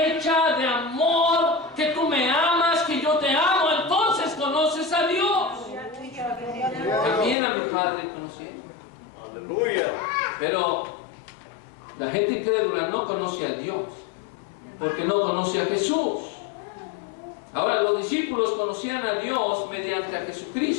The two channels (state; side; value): drops out; right; at 7.4 s